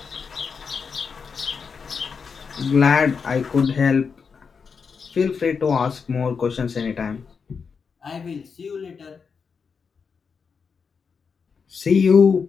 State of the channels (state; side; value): quieter; right; 5.7 dB